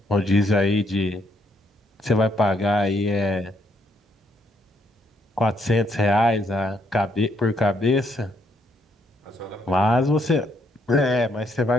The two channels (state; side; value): normal; both; correlation 0.72